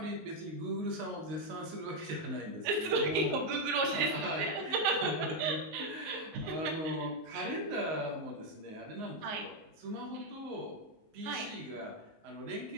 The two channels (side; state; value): left; late; 19 ms